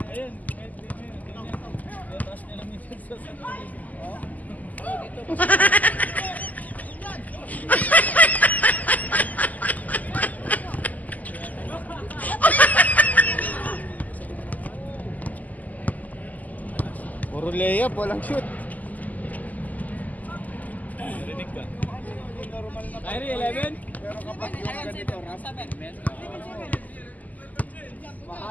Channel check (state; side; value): late; right; 0.079 ms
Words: Ayun. Taas nila minsan sa Puro layup, walang shoot. Narinig ka. Normal na Kyrie, 11? pero kapag yung ganito, ramp,